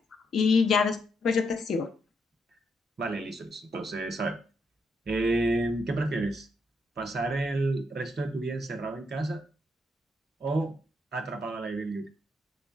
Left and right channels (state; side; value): normal; both; correlation 0.78